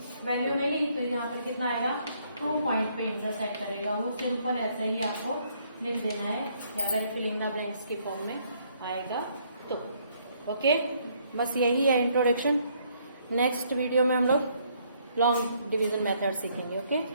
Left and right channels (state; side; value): inverted; both; correlation -0.68